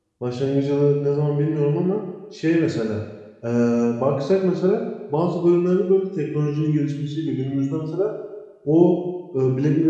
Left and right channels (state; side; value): identical; both; correlation 1.00